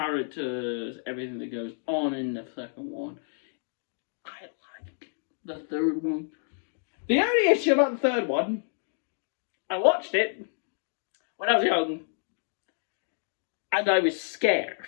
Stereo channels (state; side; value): silent; right; digital silence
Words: everything that goes on in the second one. I like the third one. The only issue about the third one, I watched it when I was young, and I was